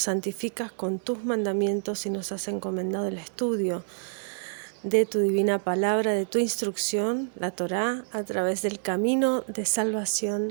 santificas con tus mandamientos y nos has encomendado el estudio de tu divina palabra, de tu instrucción, la Torá, a través del camino de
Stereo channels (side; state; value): left; silent; digital silence